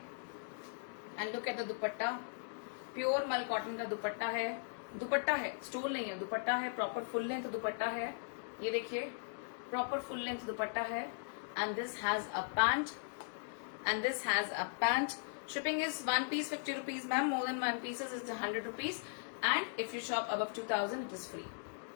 And look at the dupatta. Pure मल कॉटन का दुपट्टा है. दुपट्टा है, स्टोल नहीं है, दुपट्टा है. प्रॉपर फुल लेंथ दुपट्टा है. ये देखिए प्रॉपर फुल लेंथ दुपट्टा है. And this has a pant. And this has a pant. Shipping is one piece 50 rupees ma'am. More than one pieces is 100 rupees. And if you shop above 2000 it is free.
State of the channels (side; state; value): right; silent; digital silence